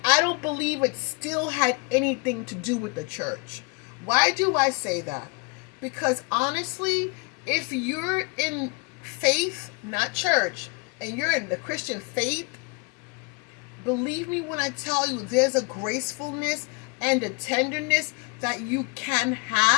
I don't believe it still had anything to do with the church. Why do I say that? Because honestly, if you're in faith, not church, and you're in the Christian faith, believe me when I tell you, there's a gracefulness and a tenderness that you can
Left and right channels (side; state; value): right; quieter; 30.3 dB